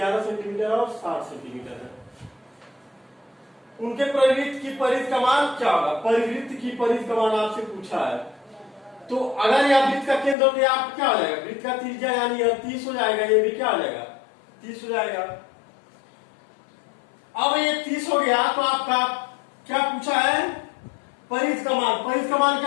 सेंटीमीटर और 60 सेंटीमीटर है। उनके परिवृत्त की परिधि का मान क्या होगा, परिवृत्त की परिधि का मान आपसे पूछा है। तो अगर यह वृत्त का केंद्र तो आप क्या हो जाएगा, वृत्त का त्रिज्या यानी यह 30 हो जाएगा, ये भी क्या हो जाएगा, 30 हो जाएगा। अब ये 30 हो गया तो आपका क्या पूछा है, परिधि का मान। परिधि का मान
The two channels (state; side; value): drops out; right; at 10.4 s